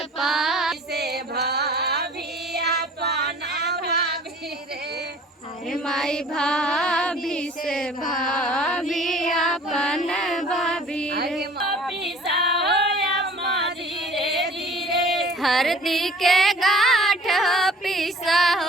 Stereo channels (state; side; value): normal; both; correlation 0.48